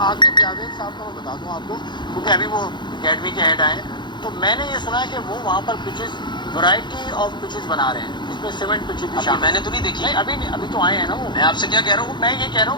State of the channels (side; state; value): right; late; 0.22 ms